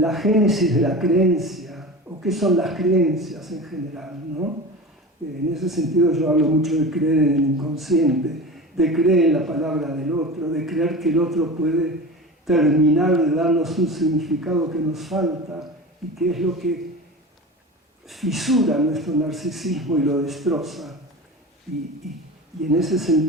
génesis de la creencia, o qué son las creencias en general, ¿no? En ese sentido yo hablo mucho de creer en el inconsciente, de creer en la palabra del otro, de creer que el otro puede terminar de darnos un significado que nos falta y que es lo que fisura nuestro narcisismo y lo destroza. Y en ese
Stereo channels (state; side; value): normal; both; correlation 0.31